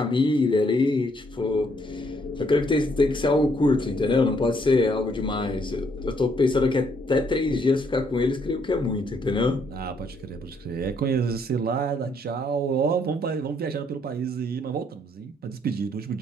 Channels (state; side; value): normal; both; correlation 0.70